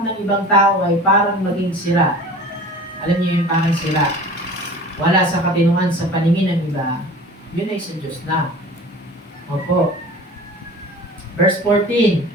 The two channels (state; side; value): normal; both; correlation 0.41